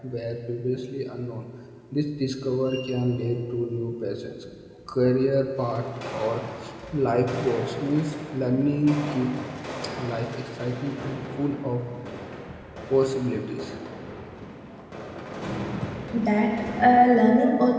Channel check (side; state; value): both; identical; correlation 1.00